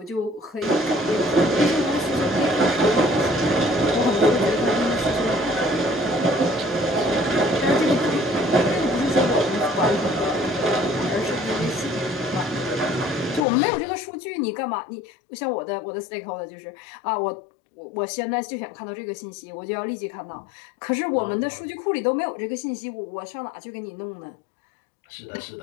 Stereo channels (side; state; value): right; drops out; at 13.5 s